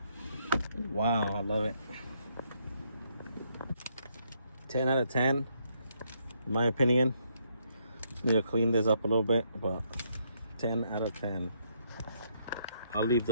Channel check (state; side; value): inverted; both; correlation -0.72